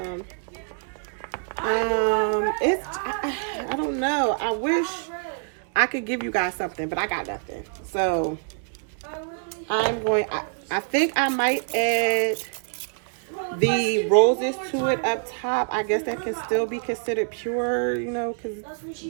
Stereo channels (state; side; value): silent; left; digital silence